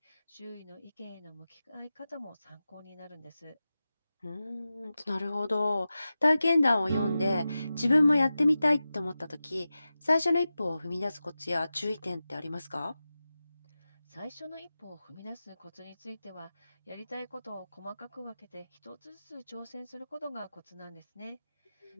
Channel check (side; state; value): both; inverted; correlation -0.94